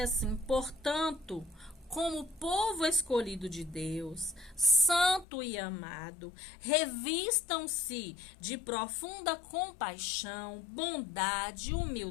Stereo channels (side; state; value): right; drops out; at 5.2 s